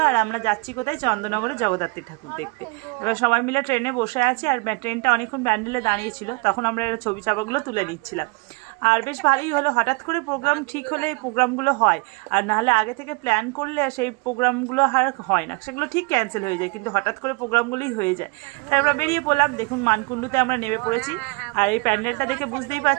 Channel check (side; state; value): left; quieter; 29.7 dB